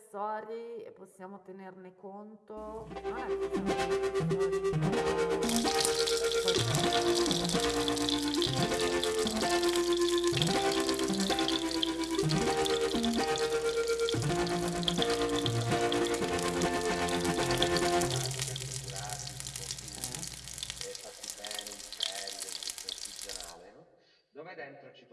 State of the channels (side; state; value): both; identical; correlation 1.00